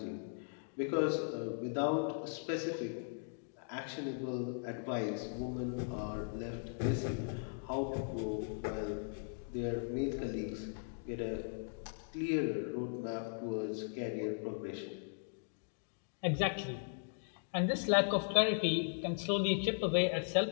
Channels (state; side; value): silent; right; digital silence